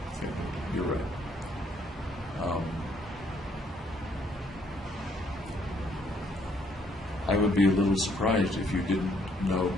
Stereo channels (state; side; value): normal; both; correlation 0.68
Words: Okay, you're right. I would be a little surprised if you didn't know,